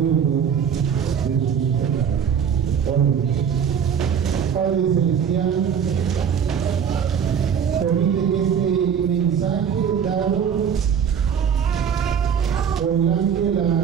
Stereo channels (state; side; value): quieter; left; 7.7 dB